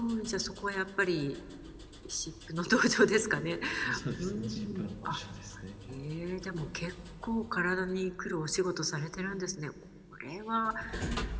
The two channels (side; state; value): both; identical; correlation 1.00